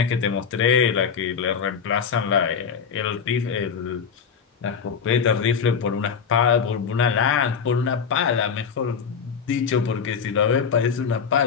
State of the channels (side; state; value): right; quieter; 6.5 dB